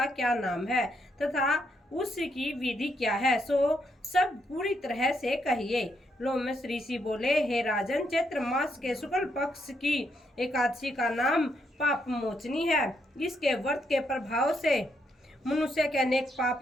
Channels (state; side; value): normal; both; correlation 0.77